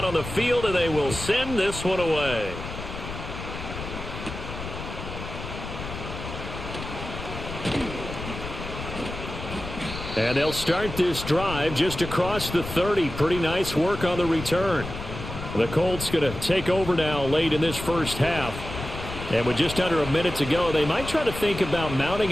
on the field, and they will send this one away. And they'll start this drive just across the 30. Pretty nice work on the return. The Colts going to take over now late in this first half. And with just under a minute to go, they might try to think about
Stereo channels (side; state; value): left; noise; rumble, 9 dB below the sound